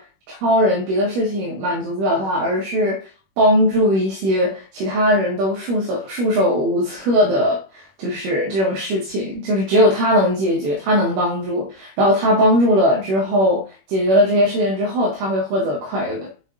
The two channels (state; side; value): late; left; 21 ms